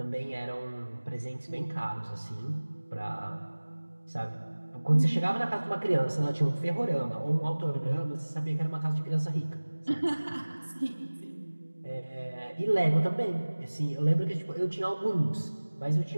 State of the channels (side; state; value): both; inverted; correlation -1.00